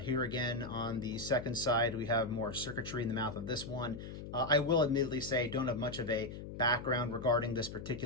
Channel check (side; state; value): left; noise; hum, 10 dB below the sound